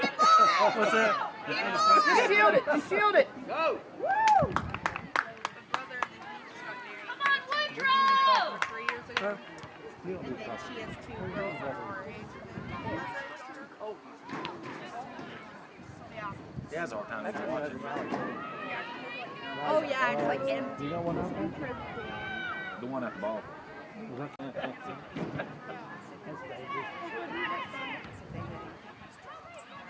What's that? Just shield it. Just shield it. Go. Come on, Woodrow! 3 years ago. And then she has 2 girls that are our age. He has a hard time watching. Oh yeah, it's like empty. You know what I'm The one at the ball.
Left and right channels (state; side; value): identical; both; correlation 1.00